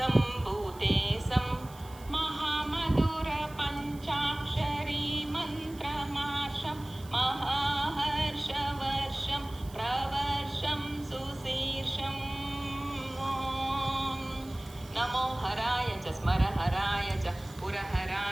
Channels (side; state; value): right; noise; hiss, 21 dB below the sound